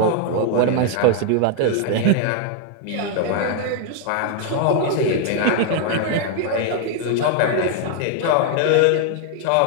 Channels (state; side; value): different; both; correlation 0.00